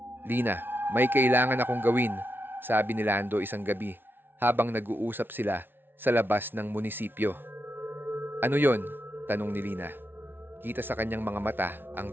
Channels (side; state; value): left; late; 0.10 ms